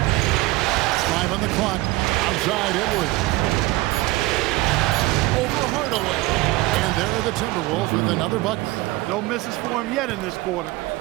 On the clock, outside Edwards. Over Hardaway. And there are the Timberwolves with another bucket. No misses for him yet in this quarter.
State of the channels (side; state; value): left; quieter; 19.5 dB